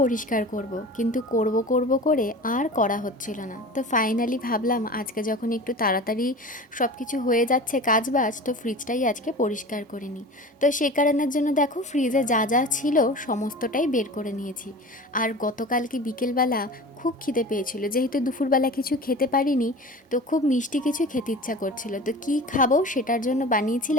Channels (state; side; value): normal; both; correlation 0.36